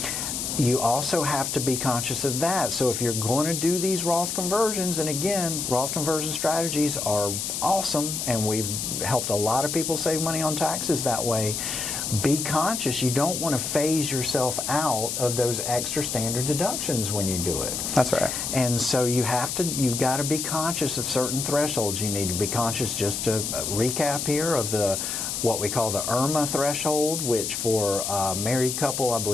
you also have to be conscious of that. So if you're going to do these Roth conversions, and again, Roth conversion strategies are awesome, and we've helped a lot of people save money on taxes that way. Be conscious. You don't want to phase yourself out of those extra standard deductions when you do it. That's right. And so you've got to be conscious of certain thresholds. You need to be conscious, just to recap here, of what we call the IRMAA threshold, which for a married couple, I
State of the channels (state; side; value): noise; left; hiss, 3 dB below the sound